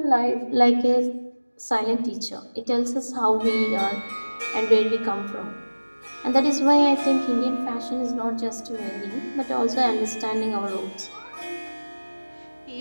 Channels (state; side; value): inverted; both; correlation -1.00